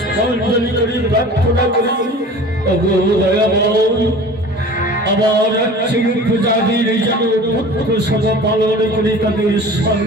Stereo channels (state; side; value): normal; both; correlation 0.41